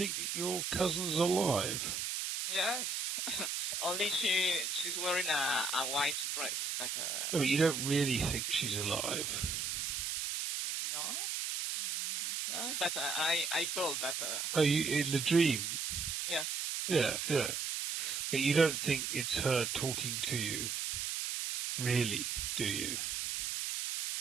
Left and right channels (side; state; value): right; noise; hiss, 2 dB below the sound